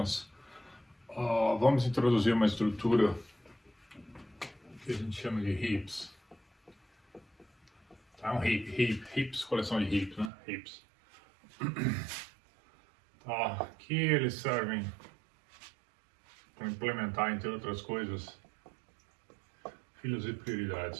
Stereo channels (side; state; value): left; drops out; at 10.3 s